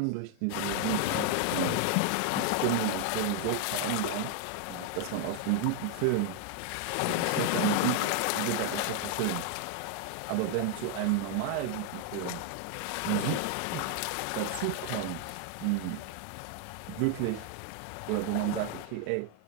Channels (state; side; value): different; both; correlation 0.00